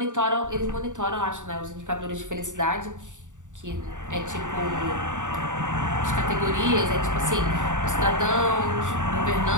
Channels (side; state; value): left; late; 0.86 ms